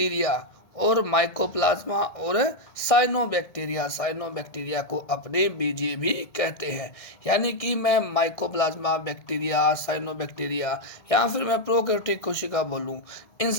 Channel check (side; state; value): right; late; 1.6 ms